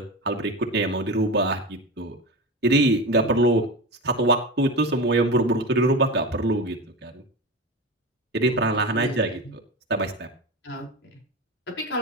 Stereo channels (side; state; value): both; normal; correlation 0.24